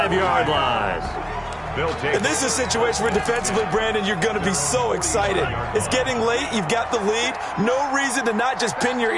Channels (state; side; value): identical; both; correlation 1.00